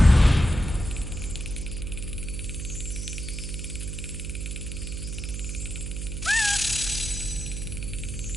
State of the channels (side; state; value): right; noise; hum, 5 dB below the sound